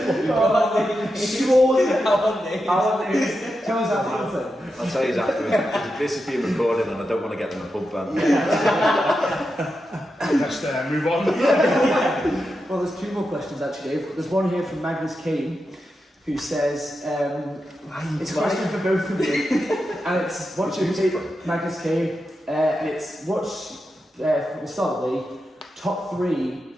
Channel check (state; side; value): normal; both; correlation 0.88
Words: Straws? How are they? Tell us that. I'll tell you afterwards. This is being recorded, and I don't want to get them a pub ban. Let's move on. Well, there's 2 more questions actually, Dave. There's one here from Magnus Kane, who says, it's a question for both of you, and it's what's your favourite, Magnus Kane, and it's we'll start with the top 3